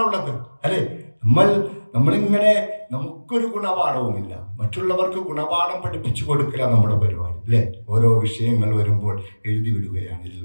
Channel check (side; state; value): both; inverted; correlation -1.00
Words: അല്ലെ, നമ്മളിങ്ങനെ നമുക്കൊരു ഗുണപാഠവുമില്ല, മറ്റുള്ളവർക്ക് ഗുണപാഠം പഠിപ്പിച്ചു കൊടുക്കുക നമ്മുടെ പരിപാടി അല്ലേ? ഓരോ വിഷയങ്ങൾ വരുമ്പോൾ എഴുതി വിടുകയാണ്, ഇതിൽ